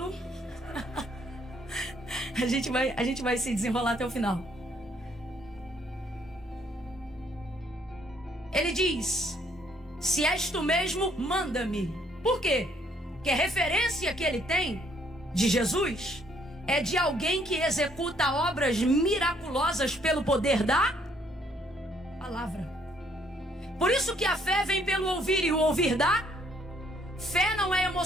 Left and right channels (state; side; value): normal; both; correlation 0.66